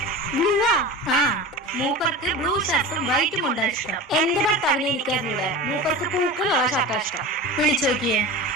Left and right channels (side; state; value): both; normal; correlation 0.32